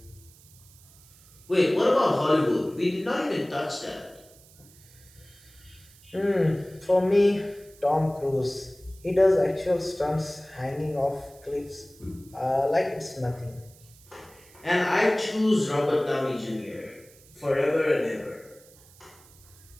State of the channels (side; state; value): right; noise; hiss, 25 dB below the sound